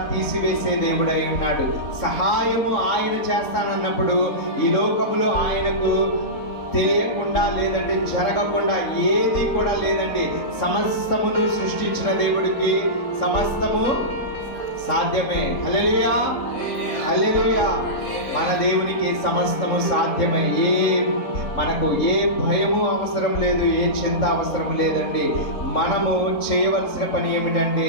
తీసివేసే దేవుడై ఉన్నాడు. సహాయము ఆయన చేస్తానన్నప్పుడు ఈ లోకంలో ఆయనకు తెలియకుండా, లేదంటే జరగకుండా ఏది కూడా లేదండి. సమస్తమును సృష్టించిన దేవుడికి సమస్తము సాధ్యమే. హల్లెలూయా, హల్లెలూయా. మన దేవునికి సమస్తము సాధ్యమే. మనకు ఏ భయము అవసరం లేదు, ఏ చింత అవసరం లేదండి. మనము చేయవలసిన పని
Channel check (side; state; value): right; late; 3.7 ms